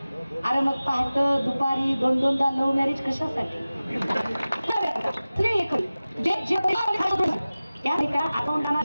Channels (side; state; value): both; inverted; correlation -0.97